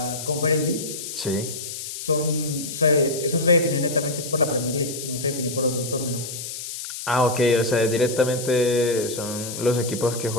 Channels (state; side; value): noise; left; hiss, 8 dB below the sound